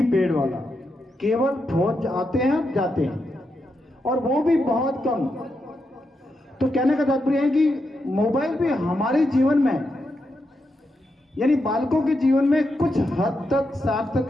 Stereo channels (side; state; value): both; normal; correlation 0.85